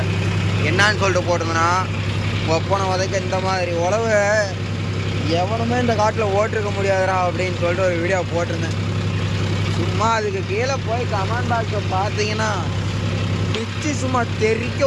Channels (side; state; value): both; identical; correlation 1.00